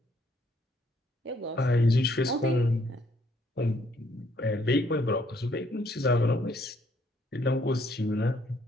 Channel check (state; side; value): normal; both; correlation 0.68